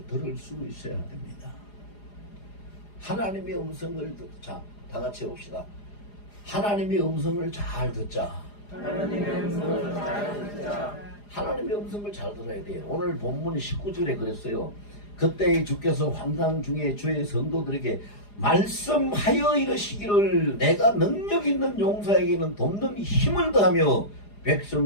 들을 수 있어야 됩니다. 하나님의 음성을 자, 다 같이 봅시다. 하나님의 음성을 잘 듣자. 하나님의 음성을 잘 듣자. 하나님의 음성을 잘 들어야 돼요. 오늘 본문 19절에 그랬어요. 그때 주께서 환상 중에 주의 성도들에게 말씀하여 이르시기를 내가 능력 있는 용사에게는 돕는 힘을 더하며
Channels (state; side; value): late; right; 4.9 ms